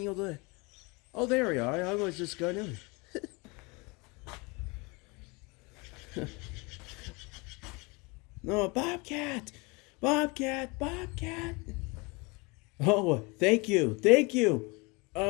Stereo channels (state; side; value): quieter; right; 27.5 dB